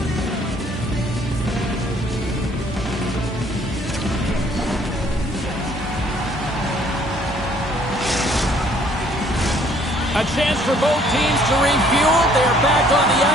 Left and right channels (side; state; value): both; normal; correlation 0.61